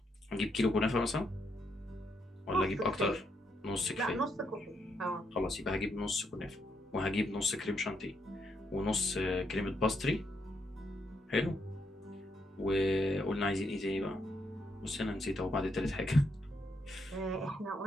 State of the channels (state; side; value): normal; both; correlation 0.78